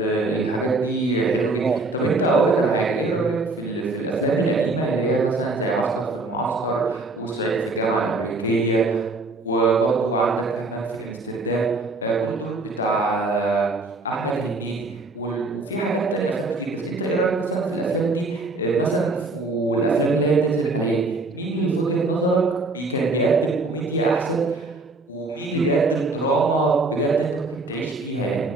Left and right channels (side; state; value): left; quieter; 3.3 dB